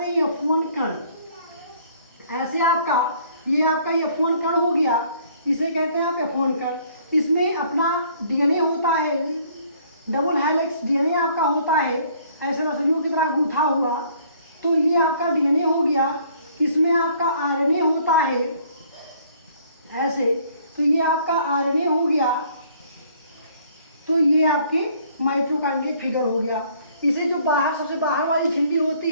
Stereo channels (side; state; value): both; inverted; correlation -0.60